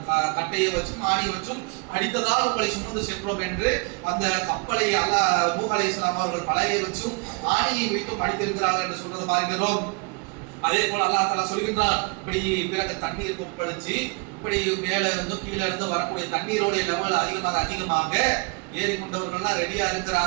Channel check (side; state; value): left; quieter; 31.8 dB